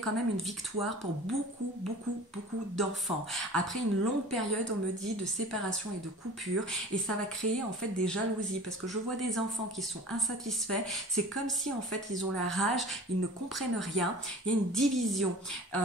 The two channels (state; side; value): normal; both; correlation 0.41